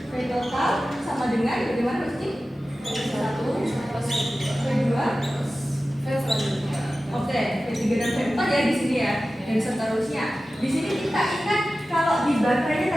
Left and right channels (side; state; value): both; normal; correlation 0.95